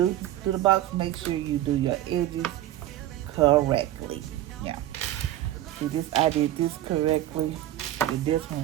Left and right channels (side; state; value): left; quieter; 13.5 dB